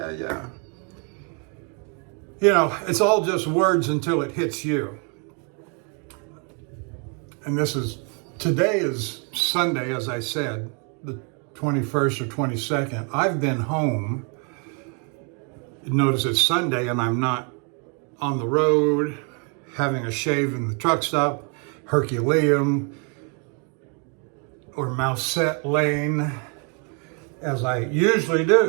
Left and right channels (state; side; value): quieter; left; 37.4 dB